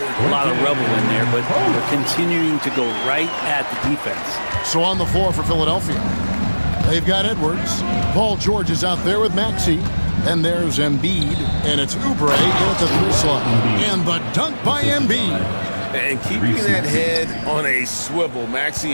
a lot of rubble in there, but they're continuing to go right at the defense. So on the floor for Philadelphia, they've got Edwards. Paul George is out there with Maxey. And there's Embiid, and it's Oubre in at the 3 slot. And the dunk by Embiid. And keeping that head on a swivel.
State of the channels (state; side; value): inverted; both; correlation -1.00